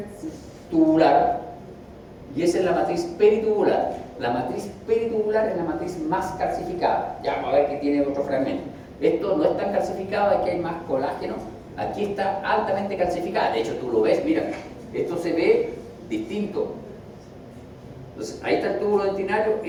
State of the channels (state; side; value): identical; both; correlation 1.00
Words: y esa es la matriz peritubular. La matriz peritubular es la matriz más calcificada. Ya vamos a ver que tiene otro fragmento. Esto no es tan calcificado, aquí hay más colágeno. Aquí está altamente calcificada. De hecho, tú lo ves, mira, esto se ve distinto. Entonces, ahí está el túbulo dentinario,